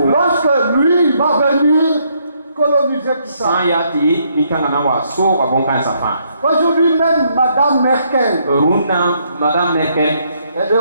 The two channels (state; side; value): inverted; both; correlation -0.72